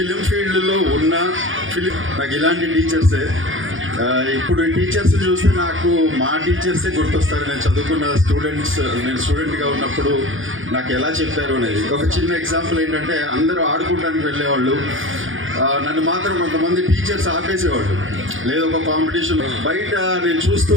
ఫీల్డ్లో ఉన్న నాకు ఇలాంటి టీచర్సే. ఇప్పుడు ఈ టీచర్స్ చూస్తే నాకు మా టీచర్సే గుర్తొస్తారు. నేను చదువుకున్న నేను స్టూడెంట్గా ఉన్నప్పుడు నాకు ఎలా చెప్పారు అనేది. ఒక చిన్న ఎగ్జాంపుల్ ఏంటంటే, అందరూ ఆడుకోవడానికి వెళ్ళేవాళ్ళు, నన్ను మాత్రం కొంతమంది టీచర్స్ ఆపేసేవాళ్ళు. లేదు ఒక కాంపిటీషన్ బయట నేను చూస్తూ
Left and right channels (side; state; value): left; late; 0.58 ms